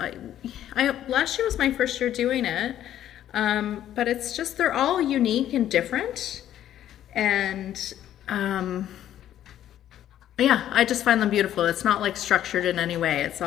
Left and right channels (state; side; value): quieter; right; 11.6 dB